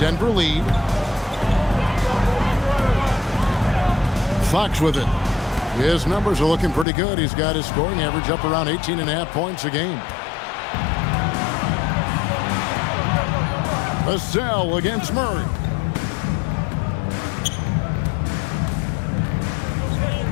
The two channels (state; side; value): drops out; right; at 6.9 s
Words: lead. Fox with it. His numbers are looking pretty good. He's got his scoring average up around 18.5 points a game. Vassell against Murray.